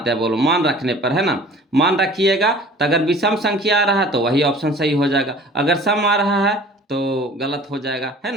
हैं बोलो, मान रखने पर, है ना। मान रखिएगा तो अगर विषम संख्या आ रहा है तो वही ऑप्शन सही हो जाएगा, अगर सम आ रहा है तो गलत हो जाएगा, है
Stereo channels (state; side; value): normal; both; correlation 0.47